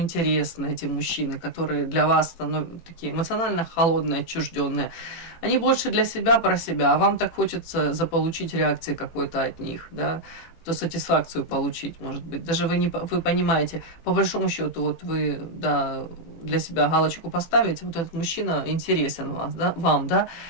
эти мужчины, которые для вас становятся такие эмоционально холодные, отчужденные. Они больше для себя, про себя, а вам так хочется заполучить реакции какой-то от них, да, то сатисфакцию получить, может быть. Даже вы понимаете, по большому счету, вот вы, да, для себя галочку поставите, вот этот мужчина интересен вам, да,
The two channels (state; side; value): late; right; 18 ms